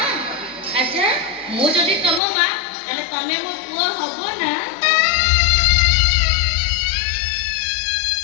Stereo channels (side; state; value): right; drops out; at 2.2 s